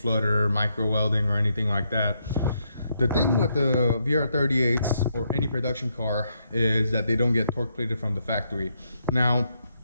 micro welding, or anything like that. The thing with the VR38s or any production car is that they don't get torque plated from the factory. Now,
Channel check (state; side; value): inverted; both; correlation -0.78